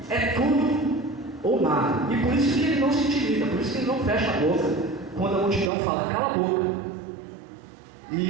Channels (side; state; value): left; drops out; at 5.7 s